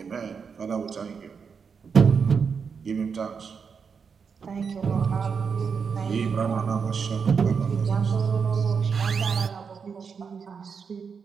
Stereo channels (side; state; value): left; quieter; 6.0 dB